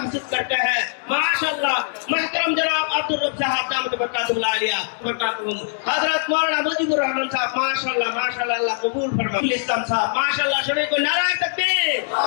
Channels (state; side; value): silent; right; digital silence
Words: करते हैं। माशाअल्लाह, महतरम जनाब अब्दुल रब साहब दामत बरकातुहुल आलिया बरकातुहुम, हजरत मौलाना मुजीबुर रहमान साहब, माशाअल्लाह माशाअल्लाह, अल्लाह कबूल फरमाए। इस्लाम साहब, माशाअल्लाह, सभी को नारा तकबीर।